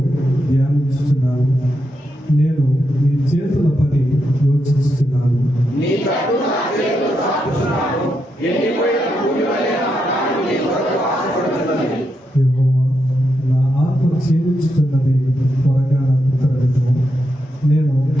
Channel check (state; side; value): normal; both; correlation 0.83